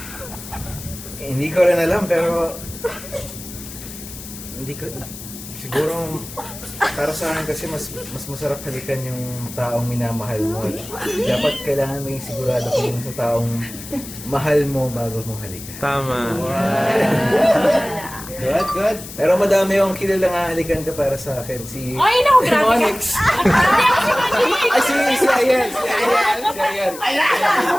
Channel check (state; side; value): noise; left; hiss, 13 dB below the sound